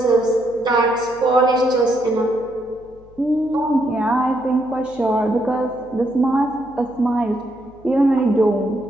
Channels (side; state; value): left; noise; hum, 25 dB below the sound